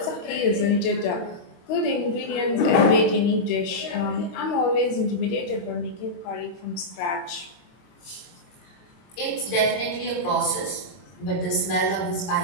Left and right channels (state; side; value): late; right; 22 ms